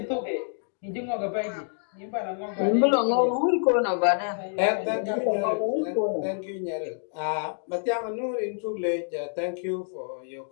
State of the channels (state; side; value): silent; right; digital silence